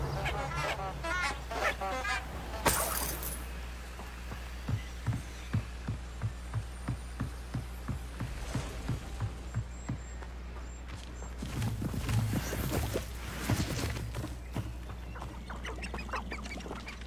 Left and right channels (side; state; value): both; identical; correlation 1.00